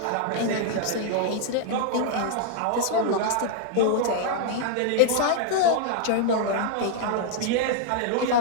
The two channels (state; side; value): different; both; correlation -0.01